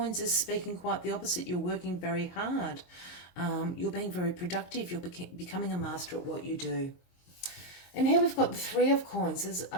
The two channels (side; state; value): right; late; 22 ms